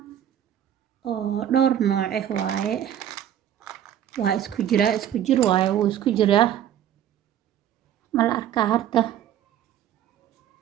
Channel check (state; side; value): quieter; left; 10.6 dB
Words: oo dhowr nooc waaye waa isku jir waaye wuu isku jiraa ma la arkaa harta